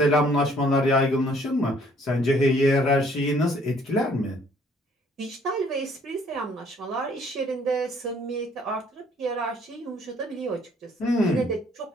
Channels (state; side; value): normal; both; correlation 0.61